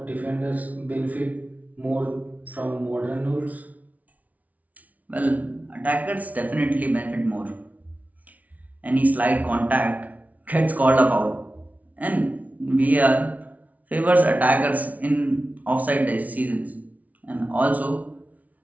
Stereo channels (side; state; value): left; late; 0.072 ms